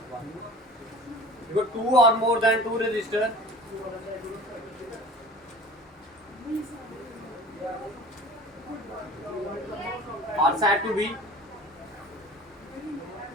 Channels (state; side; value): normal; both; correlation 0.42